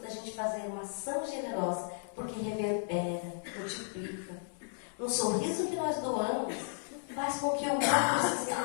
da gente fazer uma ação generosa, porque reverbera, multiplica. Um sorriso que nós doamos faz com que o outro se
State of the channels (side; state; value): right; silent; digital silence